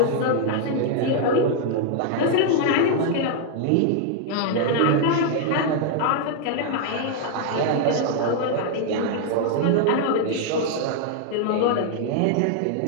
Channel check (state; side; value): different; both; correlation 0.00